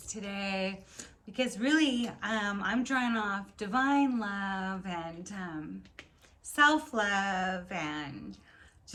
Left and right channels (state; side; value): identical; both; correlation 1.00